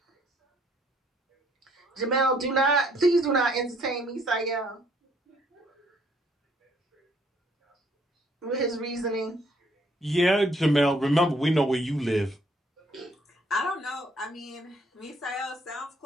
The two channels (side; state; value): both; normal; correlation 0.65